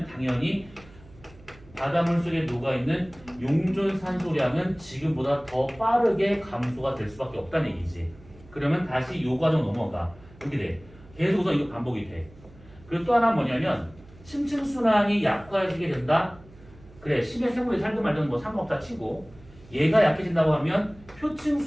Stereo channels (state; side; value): noise; right; hum, 23 dB below the sound